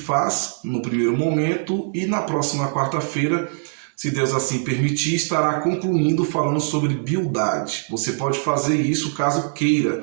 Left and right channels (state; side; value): silent; left; digital silence